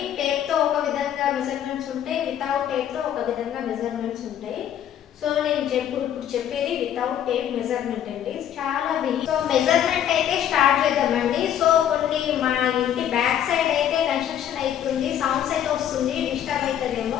టేప్తో ఒక విధంగా మెజర్మెంట్స్ ఉంటాయి, వితౌట్ టేప్తో ఒక విధంగా మెజర్మెంట్స్ ఉంటాయి. సో నేను ఇప్పుడు చెప్పేది వితౌట్ టేప్ మెజర్మెంట్ అండి. చాలా సో మెజర్మెంట్ అయితే స్టార్ట్ చేద్దామండి. సో కొన్ని మా ఇంటి బ్యాక్ సైడ్ అయితే కన్స్ట్రక్షన్ అవుతుంది, సౌండ్స్ అయితే వస్తుంది, డిస్టర్బ్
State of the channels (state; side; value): quieter; right; 10.2 dB